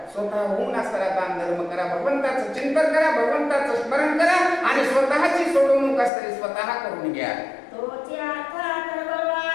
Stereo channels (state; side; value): drops out; right; at 6.1 s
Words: स्वतः होऊन असताना दान धर्म करा, भगवंताचं चिंतन करा, भगवंताचं स्मरण करा, आणि स्वतःची सोडवणूक असताना स्वतः करून घ्या. तोची अर्था